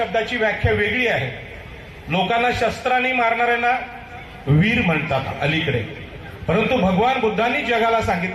व्याख्या वेगळी आहे। लोकांना शस्त्राने मारणाऱ्यांना वीर म्हणतात अलीकडे, परंतु भगवान बुद्धांनी जगाला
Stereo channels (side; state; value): both; identical; correlation 1.00